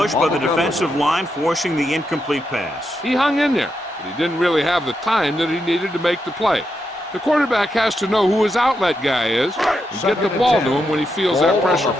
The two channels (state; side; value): normal; both; correlation 0.83